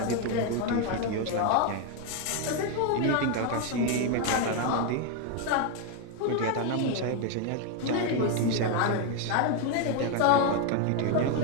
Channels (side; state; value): both; different; correlation 0.01